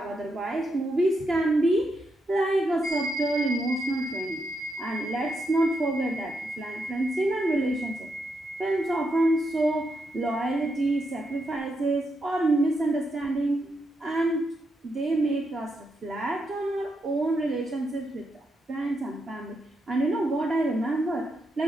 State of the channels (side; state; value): both; normal; correlation 0.82